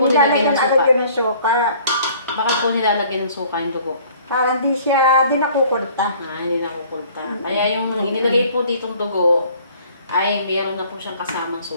nilagyan ng suka? Nilalagyan ng suka. Bakit po nilalagyan ng suka yung dugo? Para hindi siya din nakukulta. Hindi nakukulta. Kaya yung inilagay po ditong dugo, ay mayroon na po siyang kasamang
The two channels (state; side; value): inverted; both; correlation -0.54